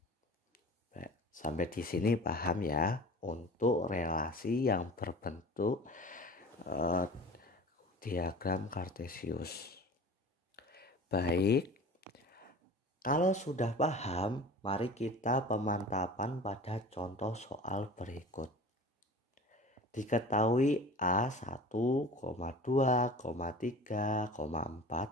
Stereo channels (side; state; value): both; normal; correlation 0.39